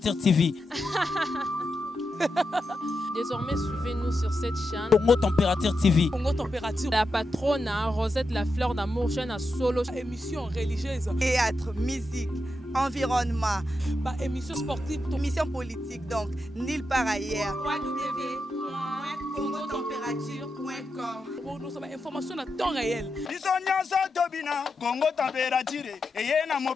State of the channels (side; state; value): both; normal; correlation 0.87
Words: TV. Désormais, suivez-nous sur cette chaîne. Congo Température TV. Congo Température. La patronne, Rosette la fleur d'amour, chaîne à solo. Émission religieuse. Théâtre, musique, environnement. Bah, émission sportive. Émission politique, donc nulle part ailleurs. www.congotempérature.com. Pour nous avons information à temps réel. Biso nyonso tobina Congo Température. Eye na